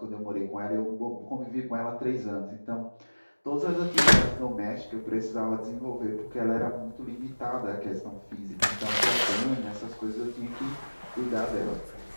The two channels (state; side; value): inverted; both; correlation -1.00